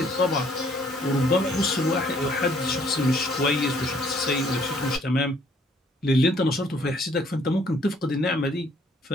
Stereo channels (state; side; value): normal; both; correlation 0.63